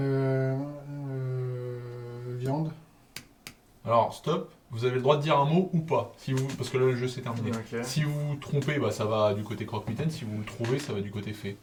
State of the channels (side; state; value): both; identical; correlation 1.00